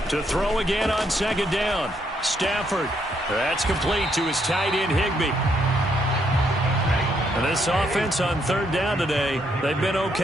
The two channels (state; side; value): normal; both; correlation 0.74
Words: To throw again on 2nd down. Stafford. That's complete to his tight end, Higbee. And this offense on 3rd down today, they've been